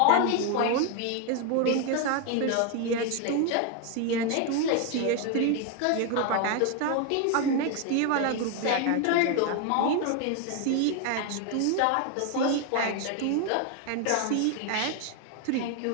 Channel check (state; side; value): different; both; correlation 0.01